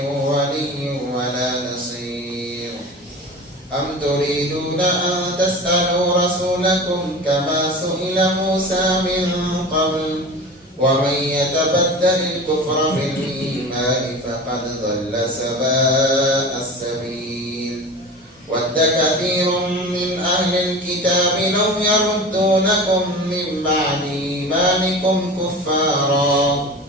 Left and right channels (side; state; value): both; normal; correlation 0.34